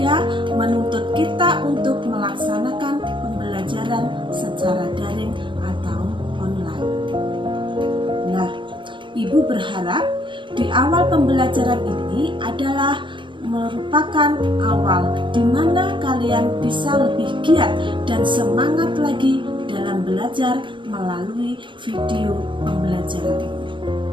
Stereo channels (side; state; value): left; late; 0.24 ms